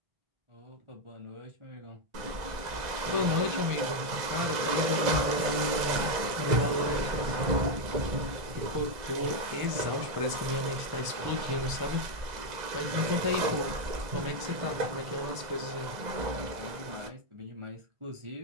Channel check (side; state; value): left; late; 2.0 ms